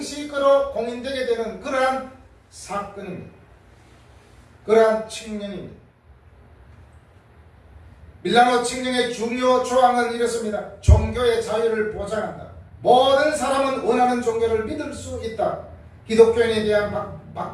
공인되게 되는 그러한 사건입니다. 그러한 칙령입니다. 밀라노 칙령의 중요 조항은 이렇습니다. 종교의 자유를 보장한다. 모든 사람은 원하는 종교를 믿을 수 있다. 기독교인에 대한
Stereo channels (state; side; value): identical; both; correlation 1.00